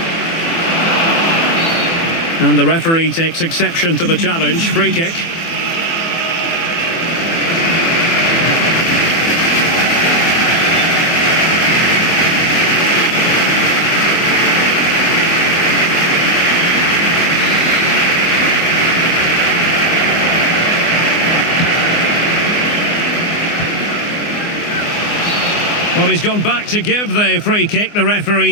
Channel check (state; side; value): late; right; 24 ms